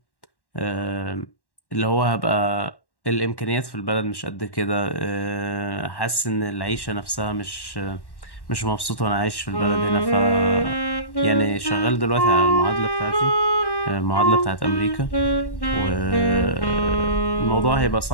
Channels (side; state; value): right; late; 1.1 ms